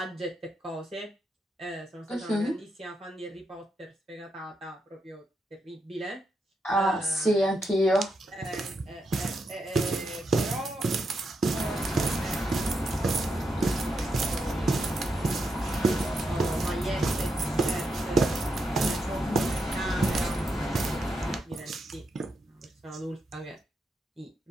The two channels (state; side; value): normal; both; correlation 0.83